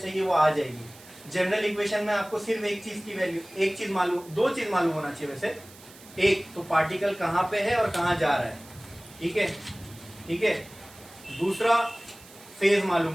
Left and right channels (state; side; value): noise; right; hiss, 21 dB below the sound